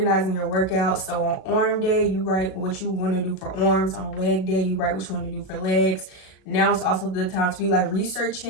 your workouts. So on arm day, you write what you want to do for arms. On leg day, you write what you want to do for legs. Now it's also the time to be like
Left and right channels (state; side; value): late; right; 37 ms